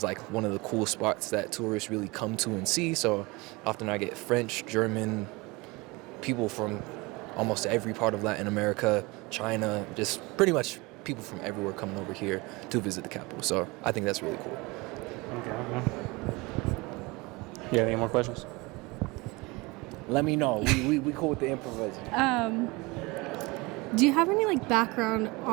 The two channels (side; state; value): left; quieter; 24.5 dB